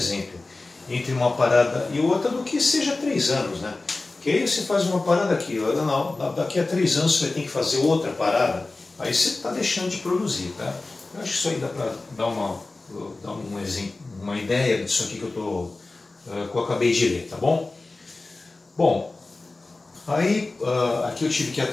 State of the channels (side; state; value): right; quieter; 3.3 dB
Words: entre uma parada e outra, do que seja 3 anos, né? Porque aí você faz uma parada aqui, não, daqui a 3 anos você vai ter que fazer outra parada, aí você está deixando de produzir, tá? Eu acho que isso aí dá para dar um exemplo, uma ideia disso aqui que eu acabei de ler, tá bom? Bom, aí aqui eu tive que